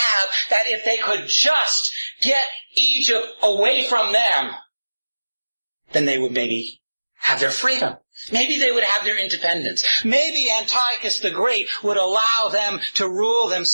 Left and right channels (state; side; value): inverted; both; correlation -1.00